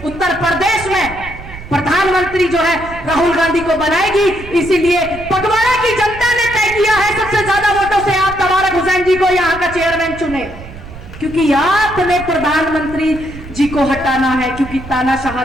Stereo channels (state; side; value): noise; right; rumble, 14 dB below the sound